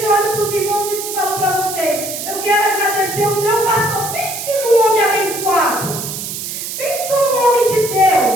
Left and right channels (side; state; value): right; noise; hiss, 6 dB below the sound